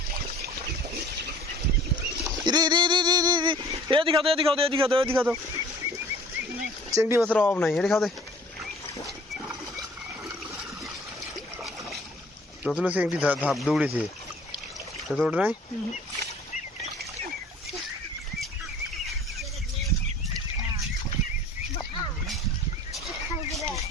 এদিকে খাও চিংড়ি মাছের অভাব নাই এটি খাও দে নতুন চিংড়ি ধাপ দৌড়েছে তো ওটা নাই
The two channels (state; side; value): normal; both; correlation 0.51